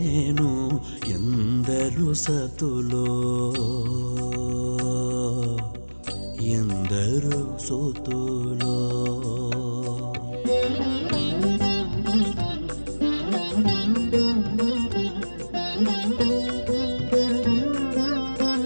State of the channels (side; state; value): both; inverted; correlation -1.00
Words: ఎందరు సతులో ఎందరు సుతులో